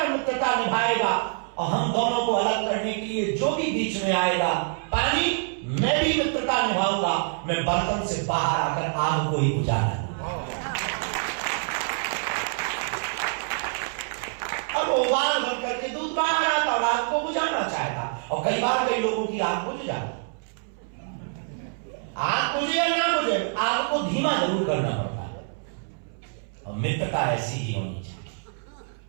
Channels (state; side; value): silent; left; 61 dB below the other